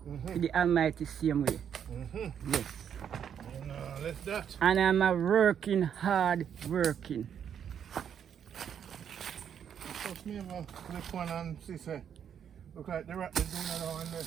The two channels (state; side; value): quieter; left; 8.5 dB